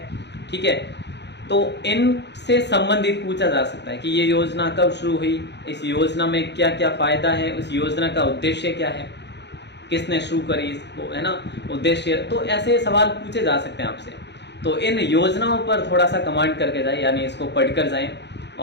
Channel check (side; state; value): right; late; 0.50 ms